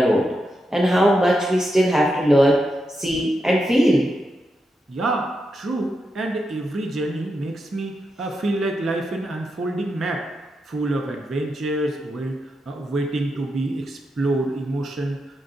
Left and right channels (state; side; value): normal; both; correlation 0.86